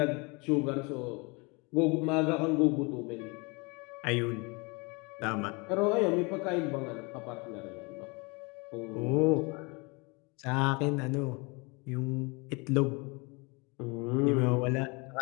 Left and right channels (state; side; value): quieter; right; 29.0 dB